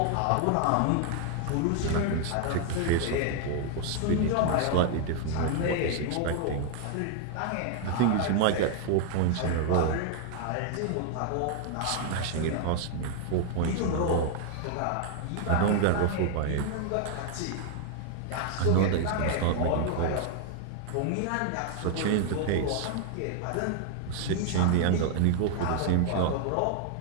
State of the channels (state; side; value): different; both; correlation 0.00